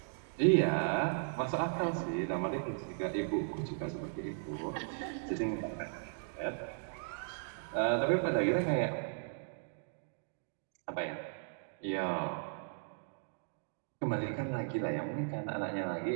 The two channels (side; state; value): left; silent; digital silence